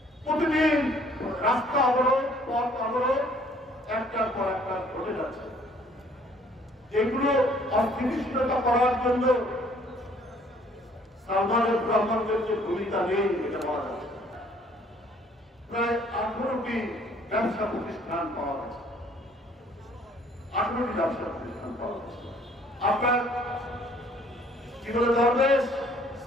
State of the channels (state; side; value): normal; both; correlation 0.59